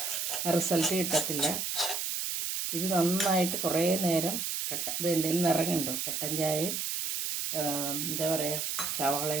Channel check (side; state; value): right; noise; hiss, 2 dB below the sound